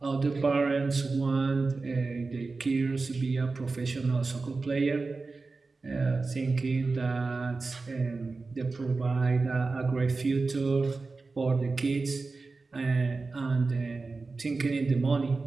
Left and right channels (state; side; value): quieter; left; 3.9 dB